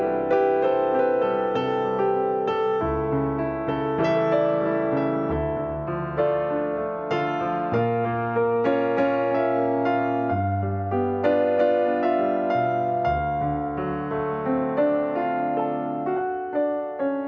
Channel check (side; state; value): both; identical; correlation 1.00